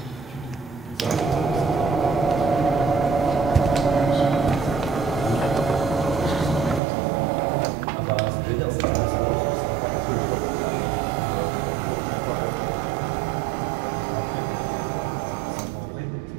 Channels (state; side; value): drops out; left; at 6.8 s